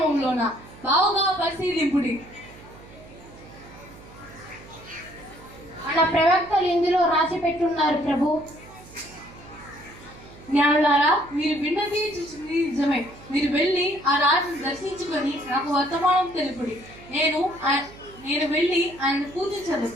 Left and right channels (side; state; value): right; noise; hum, 20 dB below the sound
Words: బావుగా పరిశీలింపుడి. మన ప్రవక్తలు ఇందులో రాసి పెట్టున్నారు ప్రభు. జ్ఞానులారా, మీరు విన్నది చూసింది నిజమే. మీరు వెళ్ళి ఆ రాజును దర్శించుకొని నాకు వర్తమానం తెలుపుడి. నేను వెళ్ళి ఆయన పూజించదు.